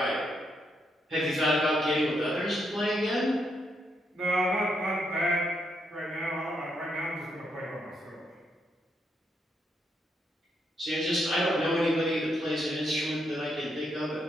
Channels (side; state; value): both; normal; correlation 0.79